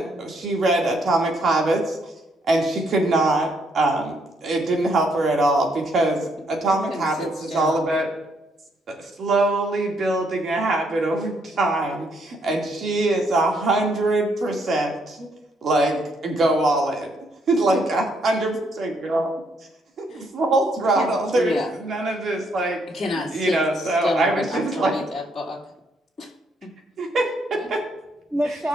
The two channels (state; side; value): normal; both; correlation 0.72